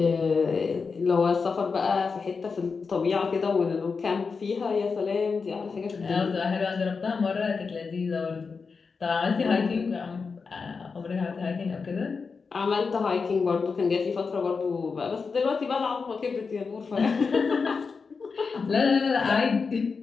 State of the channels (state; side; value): quieter; right; 5.0 dB